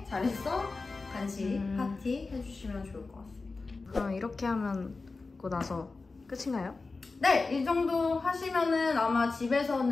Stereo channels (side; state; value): right; quieter; 3.8 dB